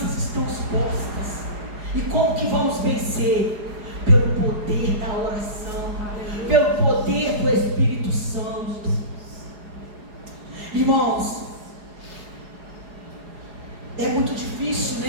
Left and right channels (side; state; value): left; late; 4.8 ms